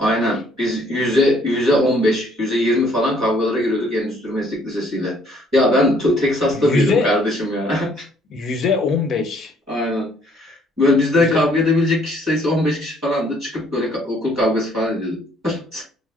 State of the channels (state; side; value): normal; both; correlation 0.63